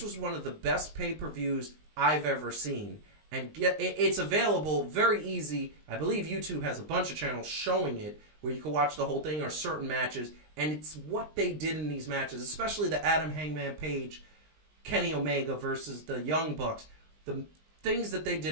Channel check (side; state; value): left; late; 20 ms